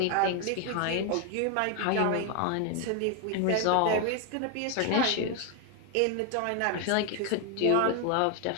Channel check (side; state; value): both; different; correlation 0.01